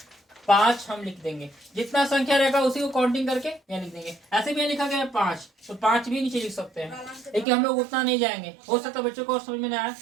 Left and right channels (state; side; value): drops out; left; at 7.5 s